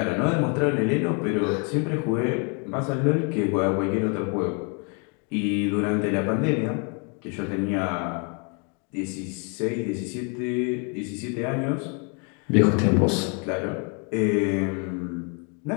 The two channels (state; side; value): quieter; right; 36.5 dB